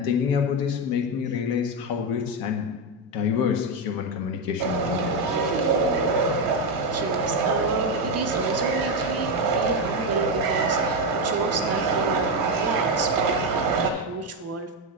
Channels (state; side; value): normal; both; correlation 0.07